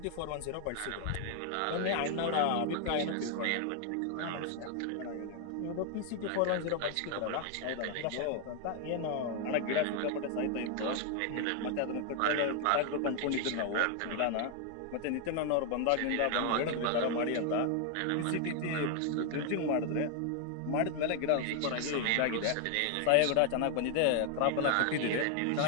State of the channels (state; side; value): different; both; correlation 0.00